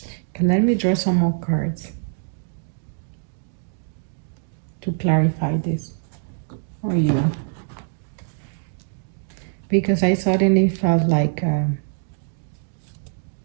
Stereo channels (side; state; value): left; silent; digital silence